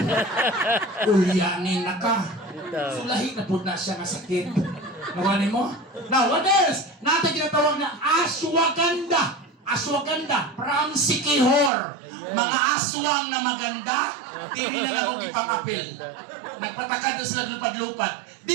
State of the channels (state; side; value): drops out; left; at 11.7 s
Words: Ulyanin na ka. Sulahi na po na siya nga sakit. Nawanin mo? Now, what else? Natin tinatawag na ashwagandha. Ashwagandha from Sikihor. Mga aswang na maganda, hindi na lang akong ipang-apil. Nagpataka na sila lupad-lupad.